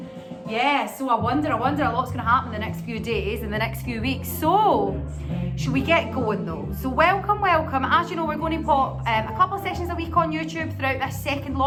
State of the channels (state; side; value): identical; both; correlation 1.00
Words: Yeah, so I wonder a lot's going to happen in the next few days, in the next few weeks. So, should we get going though? So welcome. As you know, we're going to pop a couple of sessions a week on YouTube throughout this second